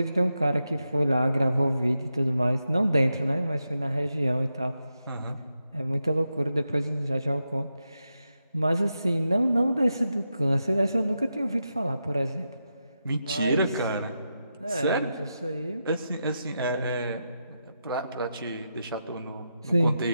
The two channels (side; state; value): both; inverted; correlation -0.87